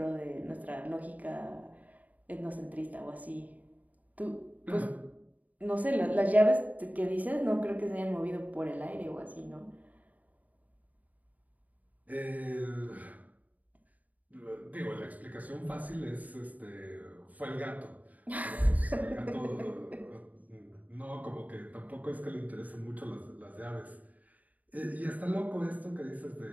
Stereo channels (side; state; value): left; late; 0.075 ms